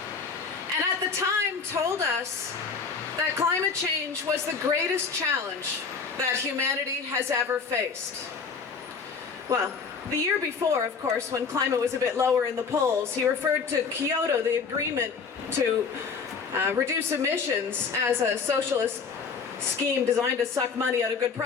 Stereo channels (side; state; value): right; quieter; 5.5 dB